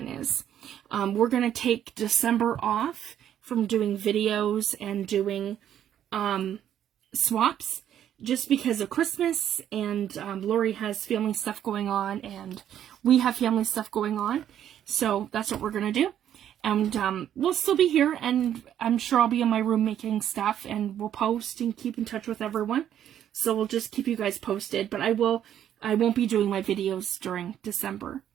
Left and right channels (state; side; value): quieter; left; 10.4 dB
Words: is. We're going to take December off from doing videos and doing swaps just because of Christmas, and Lori has family stuff going on and we have family stuff going on. So that's what we're going to do. And we'll still be here, and I'm sure I'll be in my room making stuff, and we'll post and keep in touch with everyone. So we'll just keep you guys posted, but I won't be doing my videos during December.